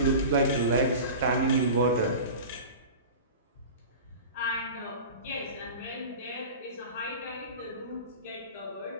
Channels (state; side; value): inverted; both; correlation -0.34